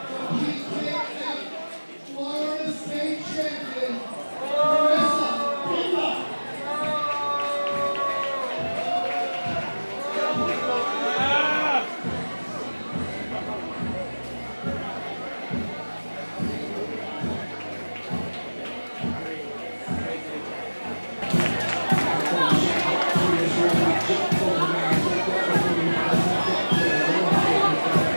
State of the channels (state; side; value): inverted; both; correlation -1.00